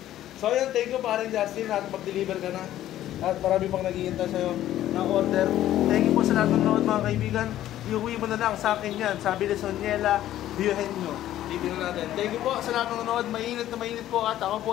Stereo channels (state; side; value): quieter; right; 13.0 dB